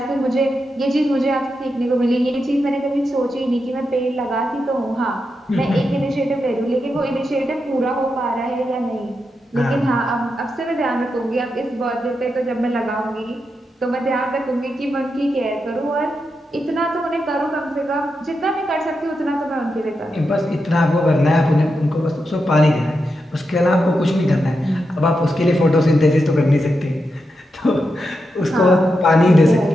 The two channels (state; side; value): normal; both; correlation 0.86